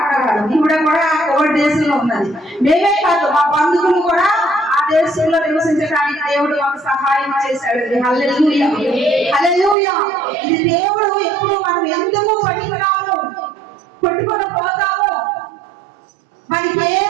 ఈవిడ కూడా కోవిడ్ దేశంలో ఉన్నది. మేమే కాదు, మా బంధువులు కూడా ఆ దేశంలో నివసించడానికి దేవుడు మాకు సహాయం చేశాడు. హల్లెలూయా, హల్లెలూయా. ఇది దేవుడు ఎప్పుడు మనం ఎందుకు పనికిరాము, కొట్టుకొని పోతాము, మనకి ఏ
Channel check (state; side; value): drops out; left; at 9.8 s